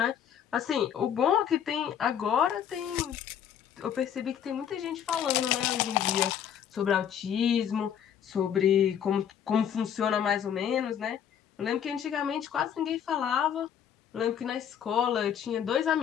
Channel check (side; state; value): right; quieter; 9.0 dB